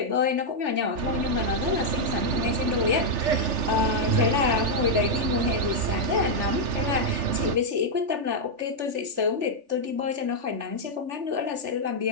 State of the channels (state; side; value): late; left; 3.4 ms